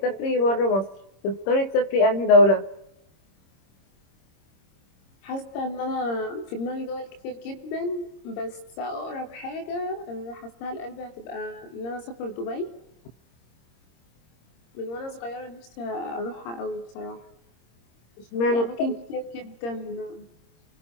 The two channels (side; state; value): right; late; 26 ms